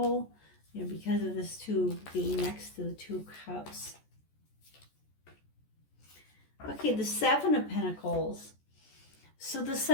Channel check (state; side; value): late; right; 14 ms